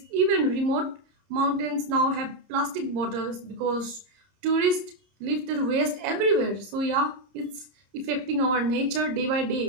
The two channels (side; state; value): left; late; 30 ms